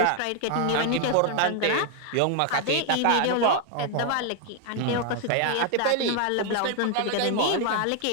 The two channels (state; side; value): different; both; correlation 0.00